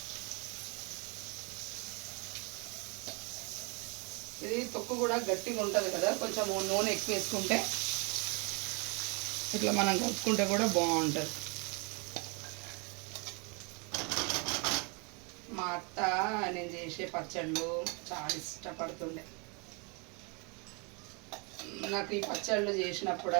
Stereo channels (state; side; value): quieter; left; 32.2 dB